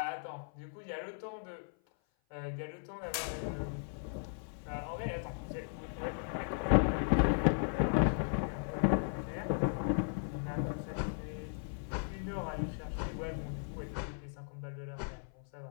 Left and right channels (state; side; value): silent; right; 53 dB below the other